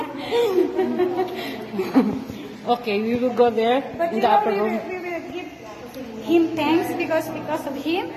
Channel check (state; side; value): identical; both; correlation 1.00